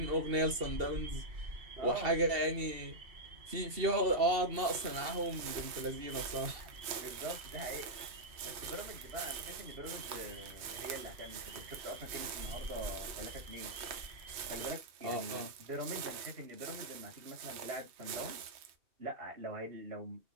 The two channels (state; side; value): late; left; 2.7 ms